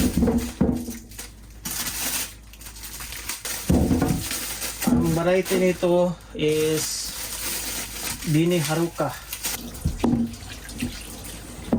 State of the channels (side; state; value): both; identical; correlation 1.00